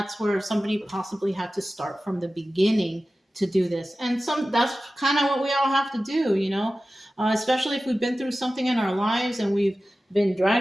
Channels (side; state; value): both; normal; correlation 0.95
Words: where somebody possibly had to start from the beginning to do this. And that's kind of what we all have to do, you know? Especially if we've been through something in our lives and we've been